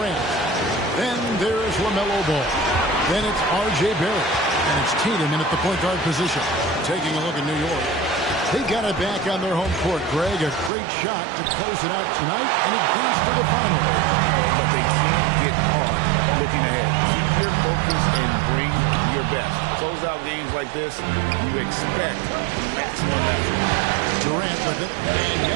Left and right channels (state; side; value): drops out; left; at 10.7 s